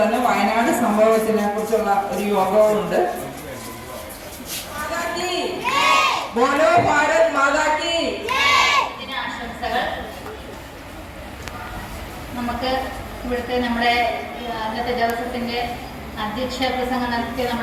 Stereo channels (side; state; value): both; identical; correlation 1.00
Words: തന്നെ വയനാട് സംഭവത്തിനെ കുറിച്ചുള്ള ഒരു യോഗവുമുണ്ട്. ബോലോ ഭാരത് മാതാ കി. നമുക്ക് ഇവിടുത്തെ നമ്മുടെ അന്നത്തെ ദിവസത്തിന്റെ അധ്യക്ഷ പ്രസംഗം നടത്തിയ